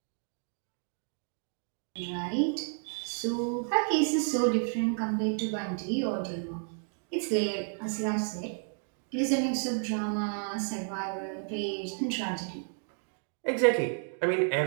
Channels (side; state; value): left; silent; 57 dB below the other